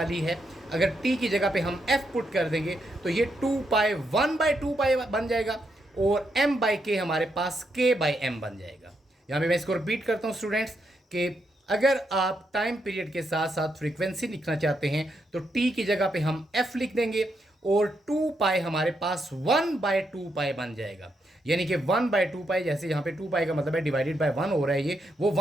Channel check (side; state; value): both; normal; correlation 0.81